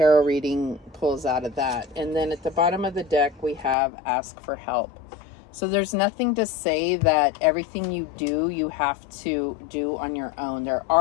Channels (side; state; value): right; drops out; at 3.8 s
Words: reading pulls out of that. And then at the bottom of the deck, we have ask for help. So there's nothing to say that everything you do, you have to do on your own. There